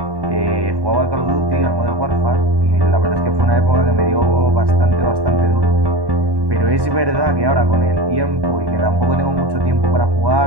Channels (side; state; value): left; late; 1.1 ms